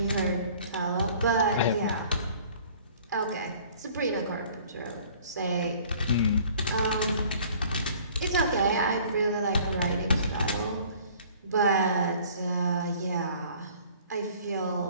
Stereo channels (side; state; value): both; inverted; correlation -0.52